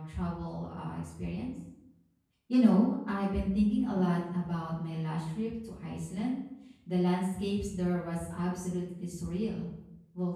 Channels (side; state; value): both; identical; correlation 1.00